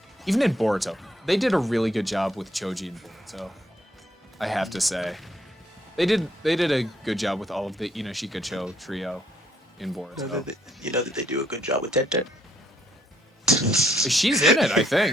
Even in Boruto, they did a really good job with Choji in Boruto. I have to say, they did a good job with all of the Inoshika Cho trio in Boruto. You know that they do a good job with Tenten. She's in it, I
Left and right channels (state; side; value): normal; both; correlation 0.70